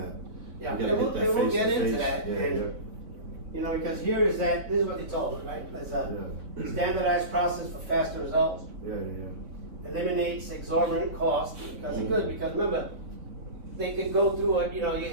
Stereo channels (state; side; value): late; left; 4.8 ms